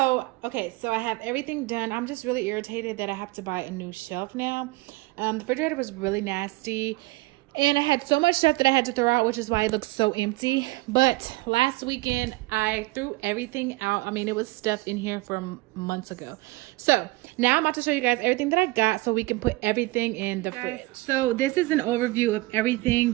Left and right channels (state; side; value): quieter; left; 21.7 dB